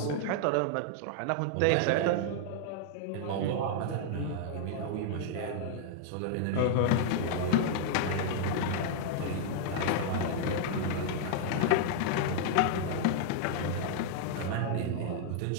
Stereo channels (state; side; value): different; both; correlation -0.01